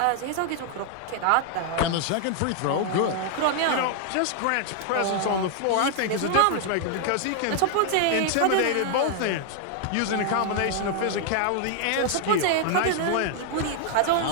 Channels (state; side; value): different; both; correlation 0.00